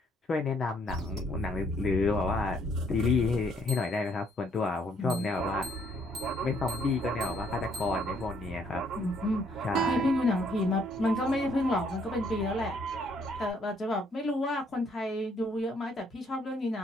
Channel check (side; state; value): both; normal; correlation 0.67